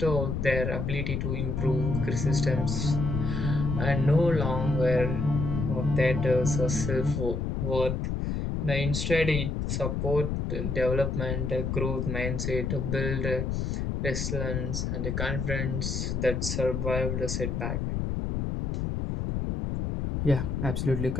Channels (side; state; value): left; noise; rumble, 1 dB below the sound